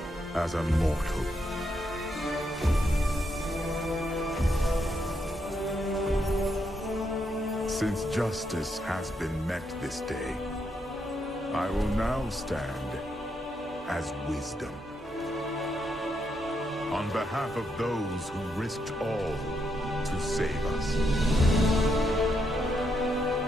as a mortal. Since justice has been met this day, I will now stand as wisdom. On behalf of those who risked all to save us.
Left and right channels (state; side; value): normal; both; correlation 0.79